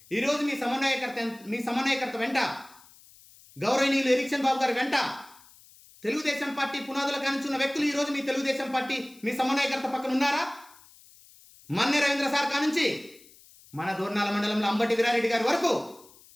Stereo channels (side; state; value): left; noise; hiss, 25 dB below the sound